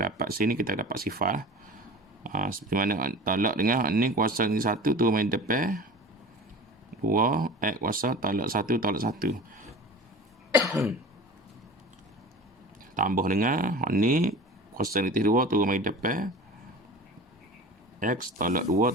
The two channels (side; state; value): both; normal; correlation 0.38